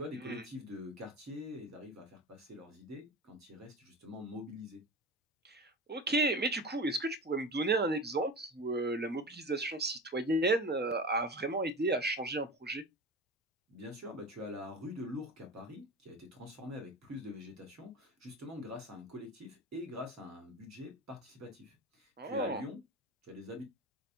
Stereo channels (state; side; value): normal; both; correlation 0.30